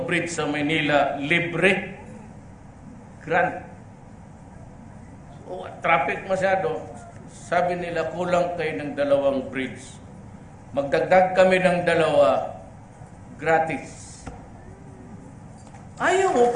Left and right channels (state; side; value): identical; both; correlation 1.00